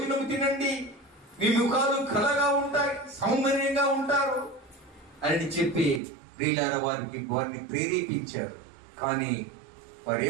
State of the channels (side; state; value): left; drops out; at 6.0 s